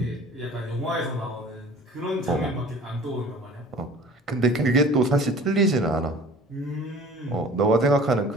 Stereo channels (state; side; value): normal; both; correlation 0.46